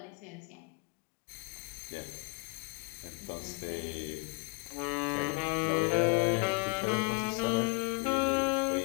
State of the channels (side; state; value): right; quieter; 34.4 dB